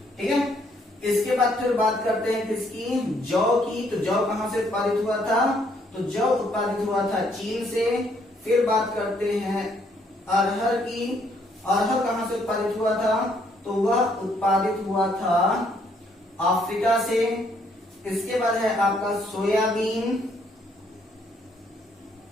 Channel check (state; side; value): normal; both; correlation 0.69